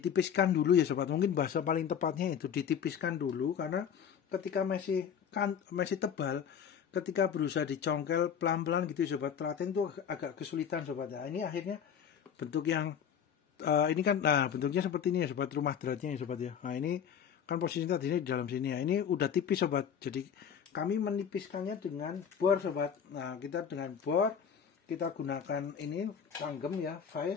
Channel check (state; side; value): quieter; right; 7.9 dB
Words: dulu ya sobat. Mungkin bahasa paling tepatnya itu ditipiskan dulu, karena ketika masih tebal, ketika berusaha dicongkel pelan-pelan gitu ya sobat, telaten itu agak kesulitan sobat. Nah ini akhirnya bentuk yang ini kan, nah bentuknya seperti ini ya sobat, rumah dratnya ya sobat ya. Nah ini kan posisi tadinya di dalam sini ya, ini udah tipis sobat. Jadi kami menipiskannya dengan bor sobat. Nah kita dengan bor, kita gunakan ini tanggem ya,